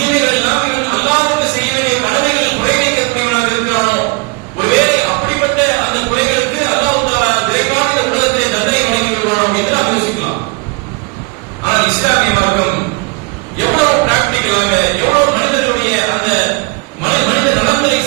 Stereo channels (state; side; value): quieter; left; 28.5 dB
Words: எல்லாம் இவன் அல்லாஹ்வுக்கு செய்ய வேண்டிய கடமைகள் குறைவைக்கக்கூடியவனாக இருக்கிறானோ, ஒருவேளை அப்படிப்பட்ட அந்த குறைகளுக்கு அல்லாஹ் தஆலா விரைவான இந்த உலகத்திலே தண்டனை வழங்கி விடுவானோ என்று நாம் யோசிக்கலாம். ஆனால் இஸ்லாமிய மார்க்கம் எவ்வளவு பிராக்டிகலாக, எவ்வளவு மனிதர்களுடைய அந்த மனித நலன்களை